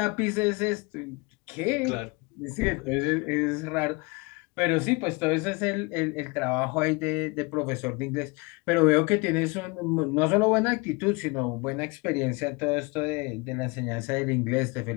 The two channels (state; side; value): quieter; right; 27.5 dB